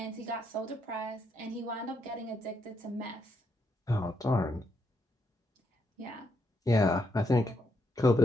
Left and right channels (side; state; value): both; normal; correlation 0.78